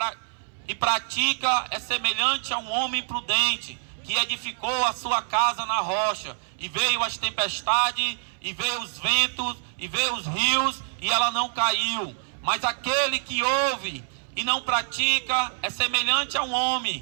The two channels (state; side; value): silent; left; 61 dB below the other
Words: pratica é semelhante a um homem prudente que edificou a sua casa na rocha, e veio as tempestades, e veio os ventos, e veio os rios, e ela não caiu. Mas aquele que ouve e não pratica é semelhante a um